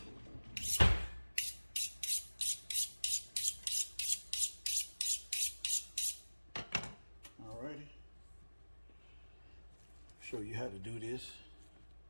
Alrighty. Show you how to do this.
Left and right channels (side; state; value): both; inverted; correlation -1.00